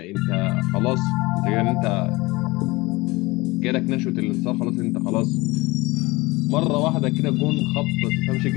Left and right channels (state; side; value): quieter; right; 22.3 dB